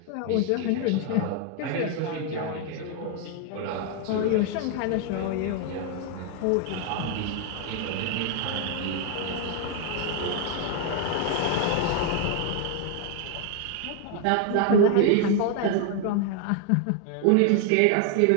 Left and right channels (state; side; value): different; both; correlation 0.01